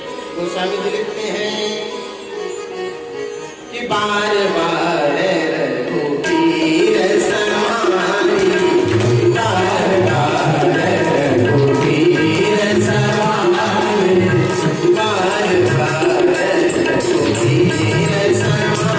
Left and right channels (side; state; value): both; identical; correlation 1.00